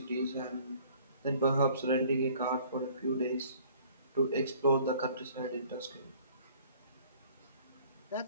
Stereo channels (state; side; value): inverted; both; correlation -0.55